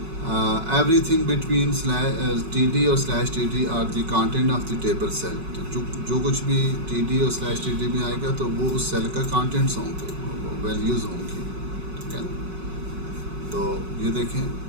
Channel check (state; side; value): late; left; 5.4 ms